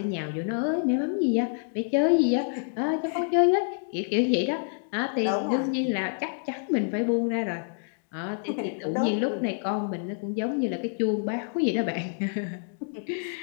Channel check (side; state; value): right; silent; digital silence